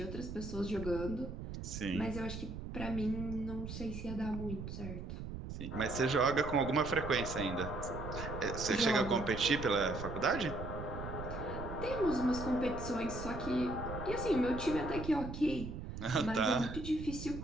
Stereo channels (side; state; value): right; noise; rumble, 8 dB below the sound